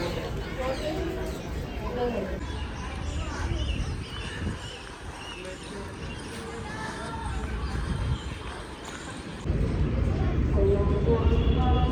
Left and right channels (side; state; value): both; identical; correlation 1.00